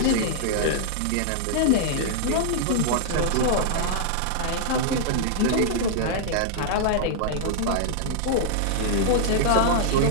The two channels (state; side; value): different; both; correlation -0.01